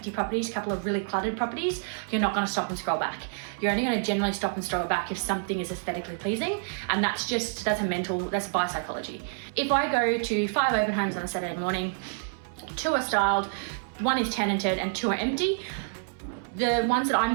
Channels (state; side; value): silent; left; 59 dB below the other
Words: properties, a couple of really cluttered properties, you're not going to stop and scroll back. You're only going to generally stop and scroll back if something is aesthetically pleasing, and that's buyer psychology. If I go to 5 open homes on a Saturday morning, 2 are styled, 1 is tenanted and 2 are empty, the ones that I'm